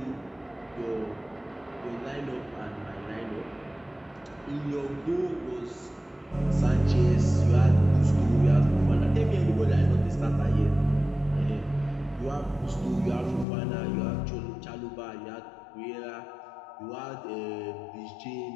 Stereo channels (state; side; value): drops out; right; at 13.5 s